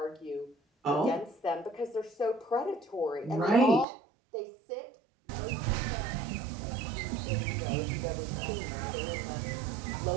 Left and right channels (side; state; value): left; drops out; at 3.9 s